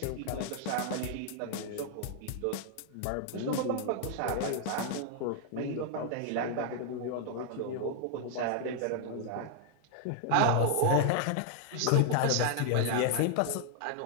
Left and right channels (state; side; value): different; both; correlation 0.00